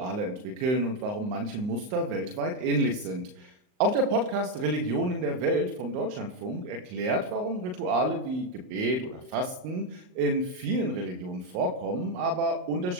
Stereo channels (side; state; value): left; late; 39 ms